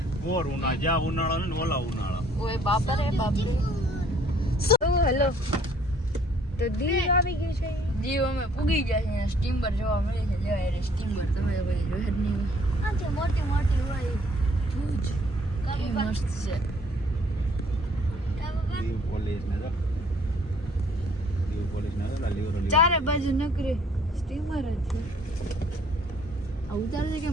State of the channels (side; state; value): both; normal; correlation 0.60